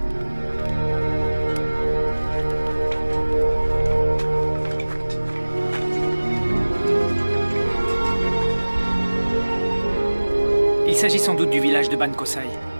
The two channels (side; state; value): both; inverted; correlation -1.00